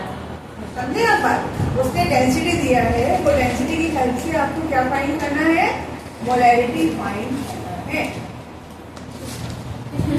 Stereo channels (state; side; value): identical; both; correlation 1.00